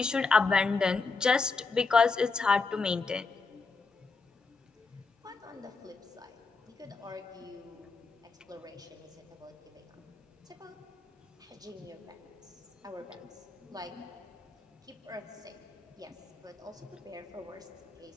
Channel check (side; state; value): right; quieter; 4.3 dB